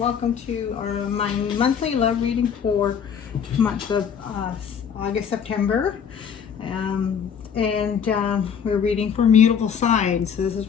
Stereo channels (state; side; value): quieter; right; 7.4 dB